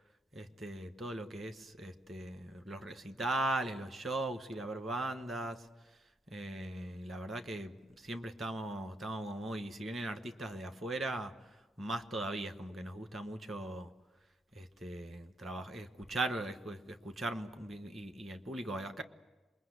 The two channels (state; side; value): normal; both; correlation 0.75